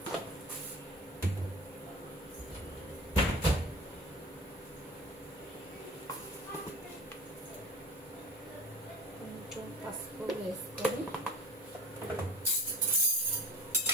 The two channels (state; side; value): normal; both; correlation 0.36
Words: కొంచెం పసుపు వేసుకొని